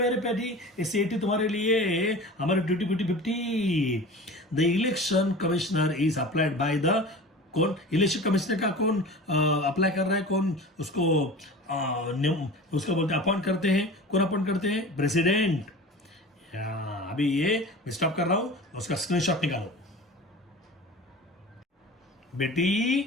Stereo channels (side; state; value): both; normal; correlation 0.36